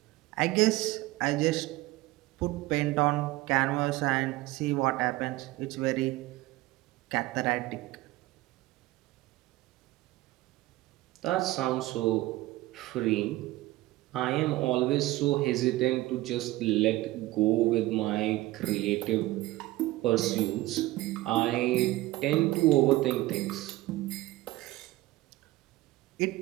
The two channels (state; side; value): quieter; left; 18.1 dB